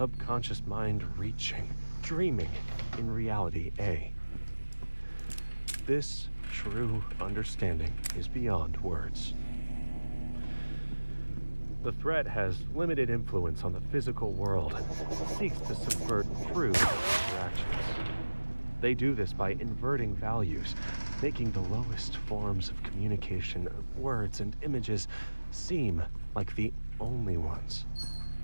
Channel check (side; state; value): both; inverted; correlation -1.00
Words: mind reaching, dreaming in reality A. This true understanding is beyond words. The threat has limited influence on the physical world and seeks to subvert true interactions. They do this by inverting values, making the lowest forms of communication, words and images, seem like the only ones.